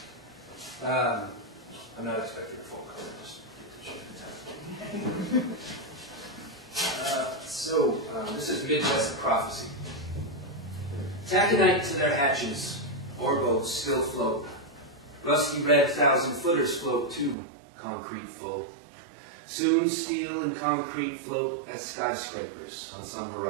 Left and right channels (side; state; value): left; drops out; at 17.4 s